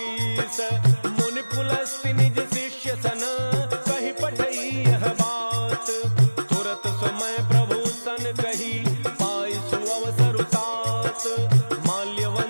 मुनि पुलस्ति निज शिष्य सन कहि पठई यह बात। तुरत समय प्रभु सन कही पाई सुअवसर तात।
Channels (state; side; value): inverted; both; correlation -1.00